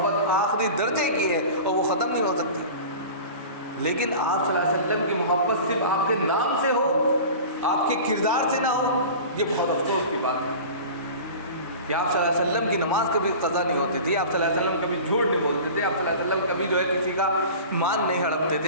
آخری درجے کی ہے اور وہ ختم نہیں ہو سکتی، لیکن آپ صلی اللہ علیہ وسلم کی محبت صرف آپ کے نام سے ہو، آپ کے کردار سے نہ ہو، یہ بہت افسوس کی بات ہے کہ آپ صلی اللہ علیہ وسلم کی نماز کبھی قضا نہیں ہوتی تھی، آپ صلی اللہ علیہ وسلم کبھی جھوٹ نہیں بولتے تھے، آپ صلی اللہ علیہ وسلم کبھی جو ہے کسی کا مان نہیں ہڑپتے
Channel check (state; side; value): inverted; both; correlation -0.37